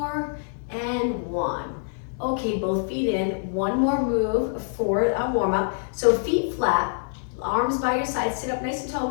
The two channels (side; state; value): right; silent; digital silence